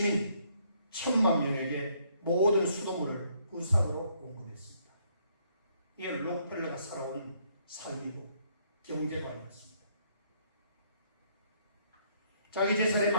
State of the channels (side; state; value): both; inverted; correlation -0.68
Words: 1,000만 명에게 모든 수돗물을 무상으로 공급했습니다. 이게 록펠러가 살아온 삶이고 경제관이었습니다. 자기 재산의